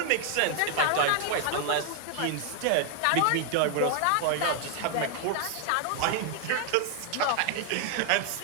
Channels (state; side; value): different; both; correlation 0.00